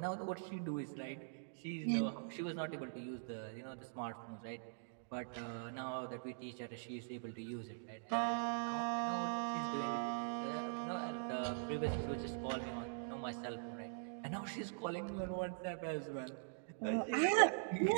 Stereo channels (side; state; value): left; silent; digital silence